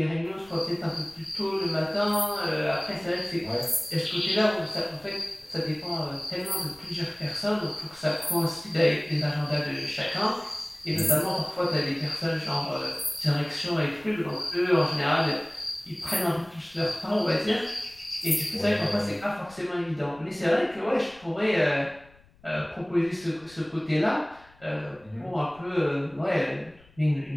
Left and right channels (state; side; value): noise; left; rumble, 27 dB below the sound